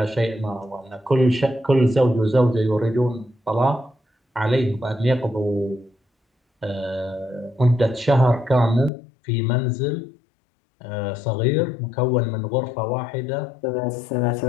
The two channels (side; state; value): right; drops out; at 8.9 s